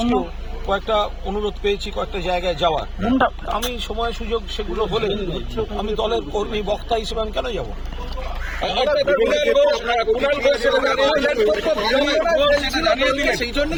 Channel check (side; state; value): both; identical; correlation 1.00